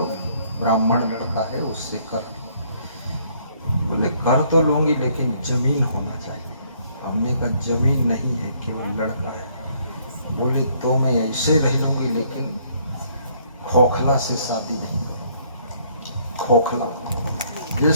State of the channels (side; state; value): both; inverted; correlation -0.65